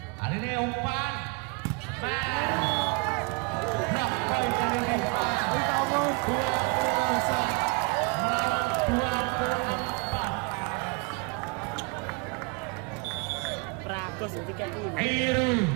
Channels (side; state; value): left; quieter; 31.6 dB